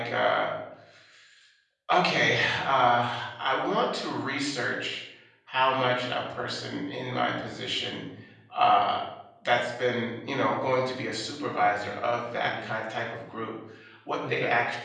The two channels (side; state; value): both; identical; correlation 1.00